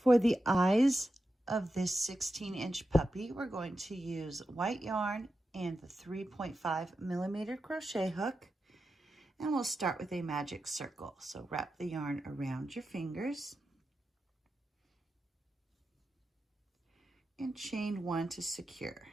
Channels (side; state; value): both; normal; correlation 0.90